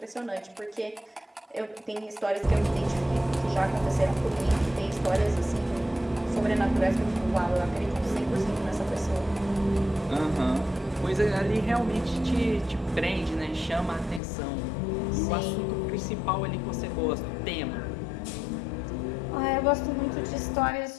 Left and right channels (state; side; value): drops out; right; at 14.2 s